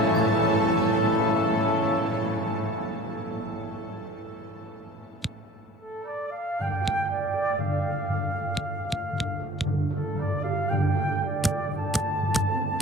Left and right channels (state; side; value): normal; both; correlation 0.46